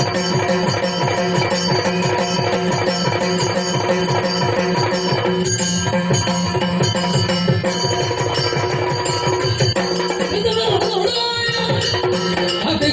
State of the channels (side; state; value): both; identical; correlation 1.00